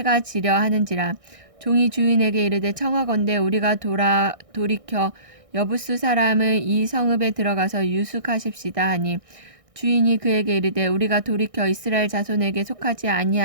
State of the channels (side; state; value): left; late; 1.6 ms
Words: 지려 하는지라. 종이 주인에게 이르되 청하건대 우리가 돌이켜 여부스 사람의 이 성읍에 들어가서 유숙하십시다 하니 주인이 그에게 이르되 우리가 돌이켜 이스라엘 자손에게 속하지